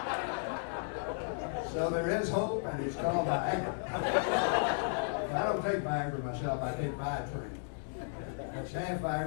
So there is hope, and it's called Viagra. I don't take Viagra myself. I take Viatrain. That's half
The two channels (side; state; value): right; silent; digital silence